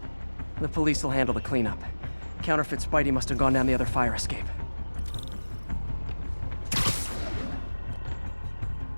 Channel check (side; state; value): both; inverted; correlation -1.00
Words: The police will handle the cleanup. Counterfeit Spidey must have gone down the other fire escape.